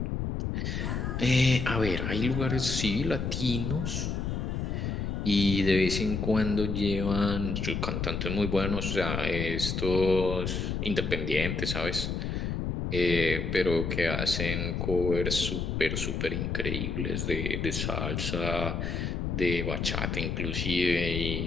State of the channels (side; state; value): left; noise; rumble, 2 dB below the sound